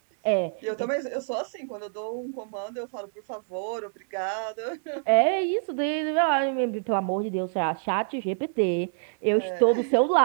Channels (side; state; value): left; silent; digital silence